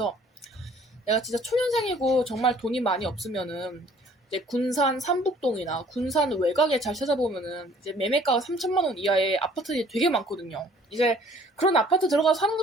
내가 진짜 초년생이고 정말 돈이 많이 없으면은 이제 군산 삼북동이나 군산 외곽에 잘 찾아보면은 이제 매매가가 3천만 원 이하의 아파트들이 되게 많거든요. 이제 그런 아파트 들어가서 사는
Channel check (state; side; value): normal; both; correlation 0.55